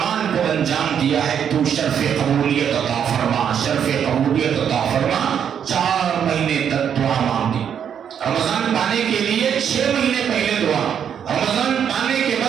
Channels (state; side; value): quieter; left; 8.4 dB